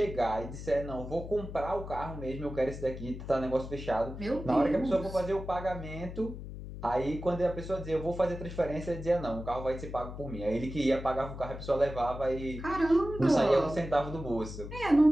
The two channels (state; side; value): noise; left; hum, 10 dB below the sound